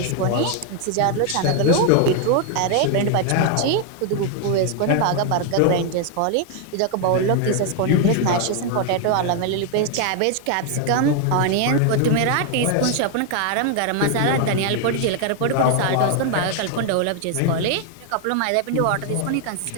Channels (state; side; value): different; both; correlation 0.00